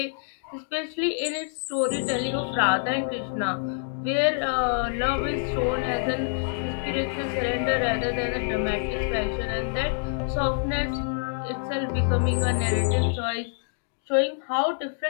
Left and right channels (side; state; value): right; silent; digital silence